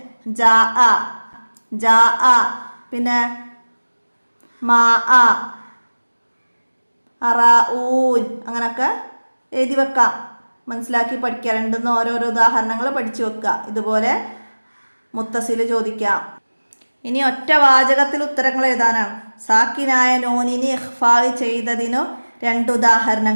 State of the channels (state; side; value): inverted; both; correlation -1.00